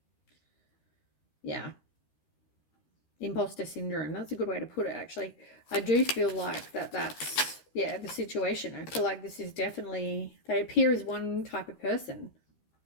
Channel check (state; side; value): late; right; 13 ms